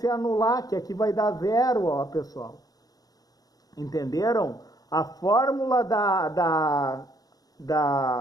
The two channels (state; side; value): late; right; 0.18 ms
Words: anular, que aqui vai dar 0, ó, pessoal. Entenderam? A fórmula da